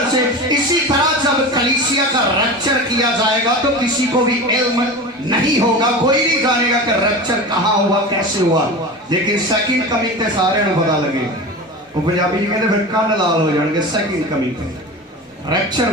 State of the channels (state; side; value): normal; both; correlation 0.29